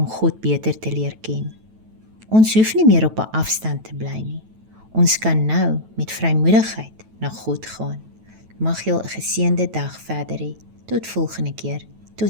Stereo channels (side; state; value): left; late; 9.2 ms